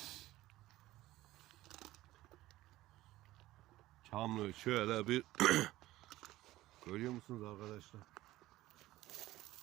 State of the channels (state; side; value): quieter; left; 16.4 dB